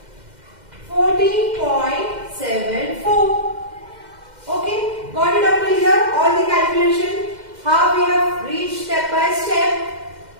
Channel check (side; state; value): left; late; 2.1 ms